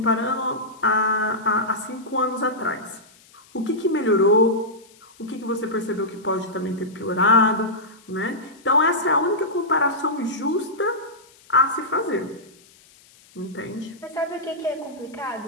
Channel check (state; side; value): noise; left; hiss, 27 dB below the sound